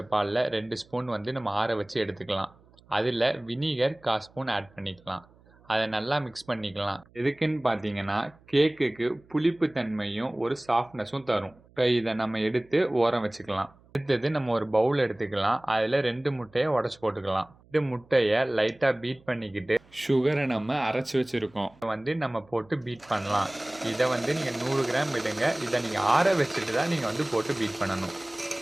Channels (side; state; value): right; noise; hum, 28 dB below the sound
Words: பாலில் 2 ஸ்பூன் நம்ம ஆற வச்சு எடுத்துக்கலாம். அதில் வினிகர் 1/4 ஸ்பூன் ஆட் பண்ணிக்கலாம். அதை நல்லா மிக்ஸ் பண்ணிக்கலாம். எதுக்குன்னு பார்த்தீங்கன்னா கேக்குக்கு புளிப்பு தன்மையும் ஒரு சாஃப்ட்னஸும் தரும். இப்போ இதை நம்ம எடுத்து ஓரம் வச்சுக்கலாம். அடுத்தது நம்ம ஒரு பவுல் எடுத்துக்கலாம். அதில் 2 முட்டையை உடச்சி போட்டுக்கலாம். 2 முட்டையை லைட்டாக பீட் பண்ணிக்கிட்டு சுகரை நம்ம அரைச்சி வச்சுருக்கோம் நம்ம போட்டு பீட் பண்ணலாம். இதை நீங்கள் 100 கிராம் விடுங்க. இதை நீங்கள் ஆற வச்சுட்டு தான் நீங்கள் போட்டு பீட் பண்ணணும்.